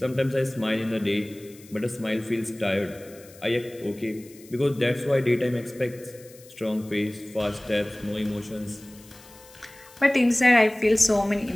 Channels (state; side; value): noise; left; hiss, 23 dB below the sound